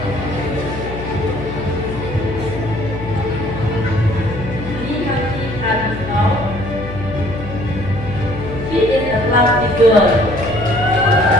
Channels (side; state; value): left; noise; hum, 9 dB below the sound